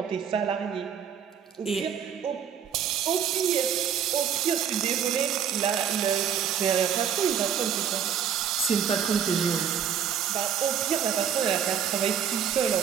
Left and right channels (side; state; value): left; quieter; 8.5 dB